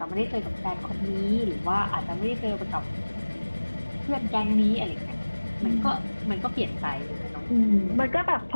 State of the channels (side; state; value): both; inverted; correlation -1.00